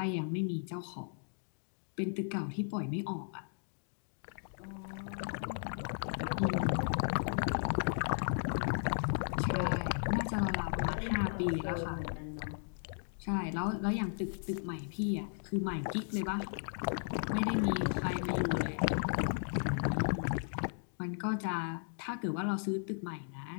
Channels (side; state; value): right; silent; digital silence